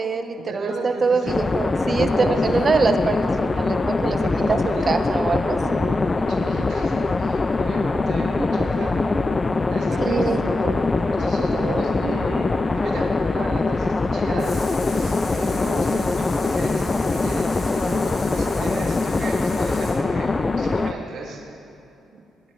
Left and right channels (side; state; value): both; normal; correlation 0.90